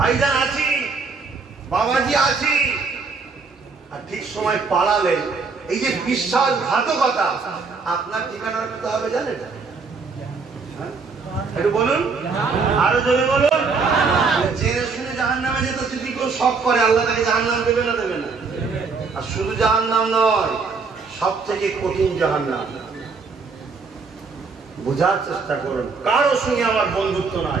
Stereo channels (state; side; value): quieter; left; 4.7 dB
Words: আছি, বাবাজি আছি, আর ঠিক সময় পালালেন, এই যে বিশ্বাসঘাতকতা, আপনার ঠিকানা রাখতে হবে জানেন? একটু বলুন, আরো জোরে বলুন। জেনে শুনে জাহান্নামে যেতে যদি কেউ শখ করে, আল্লাহ তাকে জাহান্নাম দেবে না দেবে না? আর শুধু জাহান্নাম নয়, সব থেকে কঠিন জাহান্নাম। বোঝার চেষ্টা করুন, কারো সঙ্গে আমার বন্ধুত্ব